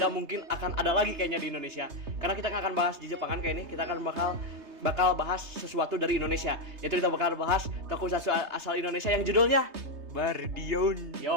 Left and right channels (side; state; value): left; late; 3.3 ms